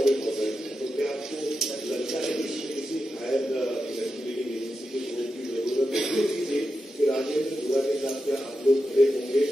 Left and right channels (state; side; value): normal; both; correlation 0.89